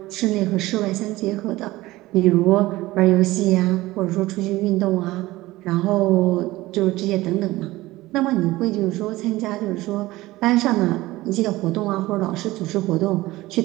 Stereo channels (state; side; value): quieter; left; 18.3 dB